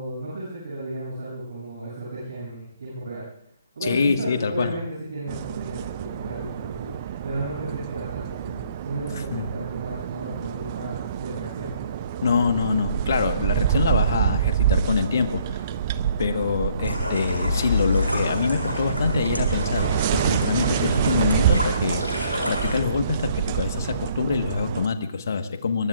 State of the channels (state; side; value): inverted; both; correlation -0.64